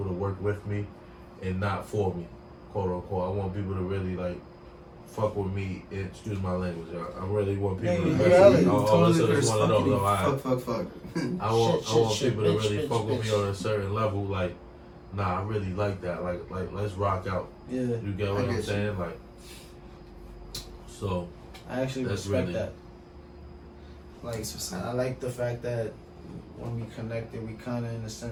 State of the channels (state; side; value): identical; both; correlation 1.00